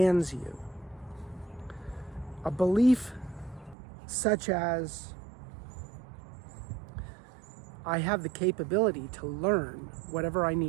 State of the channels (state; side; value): drops out; left; at 3.8 s